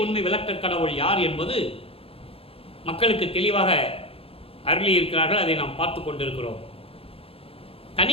உண்மை விளக்க கடவுள் யார் என்பது மக்களுக்கு தெளிவாக அருளி இருக்கிறார்கள். அதை நாம் பார்த்து கொண்டிருக்கிறோம்.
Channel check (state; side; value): late; right; 0.27 ms